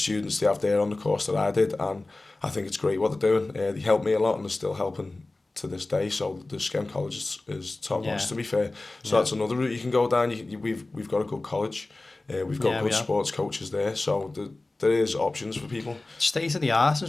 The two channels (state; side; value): quieter; right; 3.0 dB